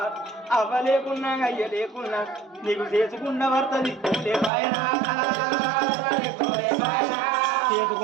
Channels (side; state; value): left; drops out; at 4.5 s